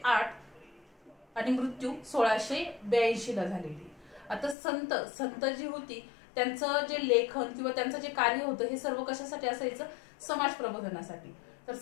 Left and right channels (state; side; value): drops out; right; at 4.5 s